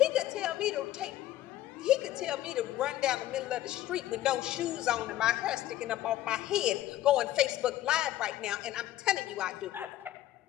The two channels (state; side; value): quieter; right; 13.9 dB